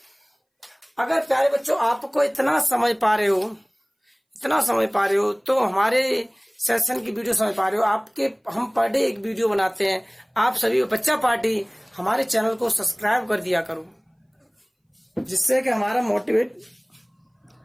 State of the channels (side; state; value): both; identical; correlation 1.00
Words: अगर प्यारे बच्चों आपको इतना समझ पा रहे हो तो हमारे सेशन की वीडियो समझ पा रहे हो। हम पर डे एक वीडियो बनाते हैं। आप सभी बच्चा पार्टी हमारे चैनल को सब्सक्राइब कर दिया करो, जिससे कि हमारा मोटिवेट।